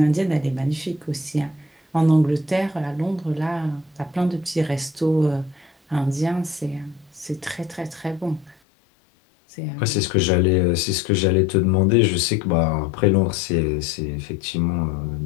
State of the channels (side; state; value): right; drops out; at 8.6 s